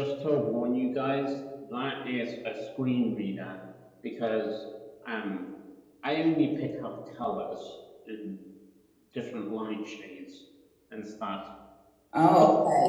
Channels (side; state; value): both; identical; correlation 1.00